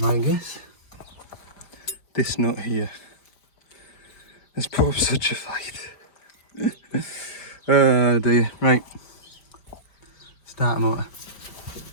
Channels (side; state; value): right; late; 5.1 ms